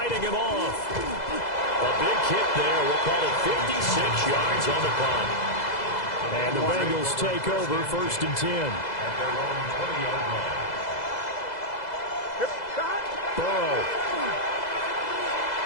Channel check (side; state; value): right; late; 2.0 ms